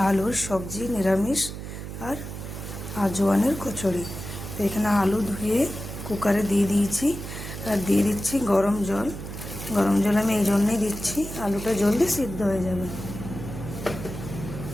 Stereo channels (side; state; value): right; noise; hum, 9 dB below the sound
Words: আলুর সবজি, নিরামিষ আর আজওয়ানের কচুরি। তো এখানে আলু ধুয়ে কুকারে দিয়ে দিয়েছি আর দিয়ে দিচ্ছি গরম জল। গরম জল আমি এই জন্যই দিচ্ছি, আলুটা জলদি সিদ্ধ হয়ে যাবে।